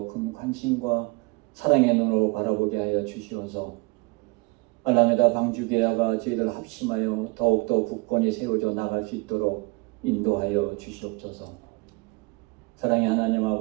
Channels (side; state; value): left; quieter; 26.2 dB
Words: 큰 관심과 사랑의 눈으로 바라보게 하여 주시어서 알라메다 방주교회가 저희들 합심하여 더욱더 굳건히 세워져 나갈 수 있도록 인도하여 주시옵소서. 사랑의 하나님